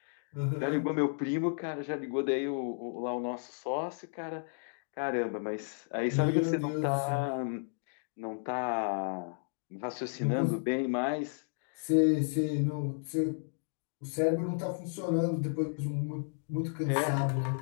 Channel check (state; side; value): silent; right; digital silence